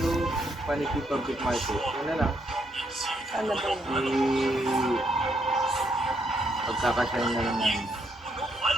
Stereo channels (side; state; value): both; normal; correlation 0.75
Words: Paniki Public Market. Yun na lang. Saan na ba yun? Pagkakasyahin na lang namin.